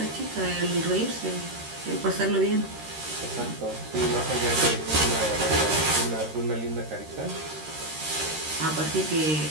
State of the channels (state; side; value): late; left; 13 ms